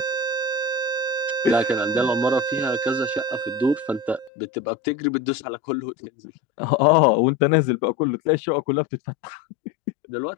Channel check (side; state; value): right; drops out; at 4.3 s